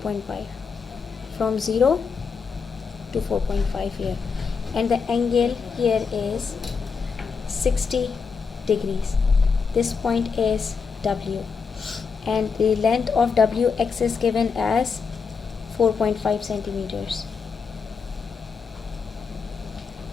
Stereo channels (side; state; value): right; quieter; 5.5 dB